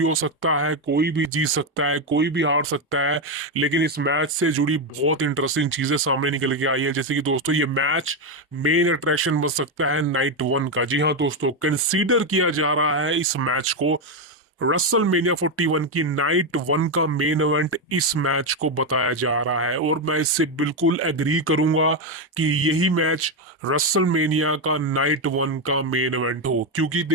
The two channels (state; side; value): normal; both; correlation 0.07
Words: हो सकता है, कोई भी जीत सकता है, कोई भी हार सकता है। लेकिन इस मैच से जुड़ी बहुत इंटरेस्टिंग चीजें सामने निकल के आई है, जैसे कि दोस्तों, ये मैच मेन अट्रैक्शन बन सकता है नाइट वन का। जी हाँ दोस्तों, कंसीडर किया जा रहा है इस मैच को रसल मेनिया 41 की नाइट वन का मेन इवेंट इस मैच को बताया जा रहा है, और मैं इससे बिल्कुल एग्री करूंगा कि यही मैच रसल मेनिया का नाइट वन का मेन इवेंट हो, क्योंकि